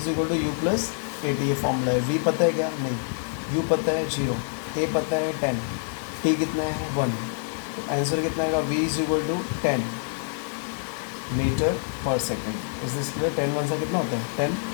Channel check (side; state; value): right; silent; digital silence